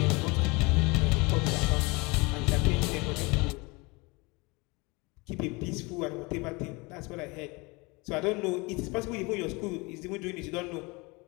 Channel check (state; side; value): quieter; right; 26.3 dB